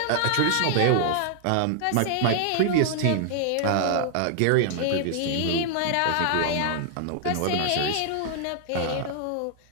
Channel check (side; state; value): both; different; correlation -0.01